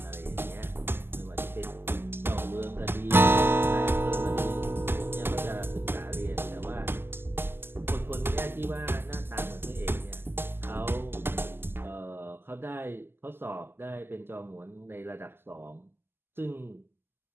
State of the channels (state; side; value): late; left; 0.11 ms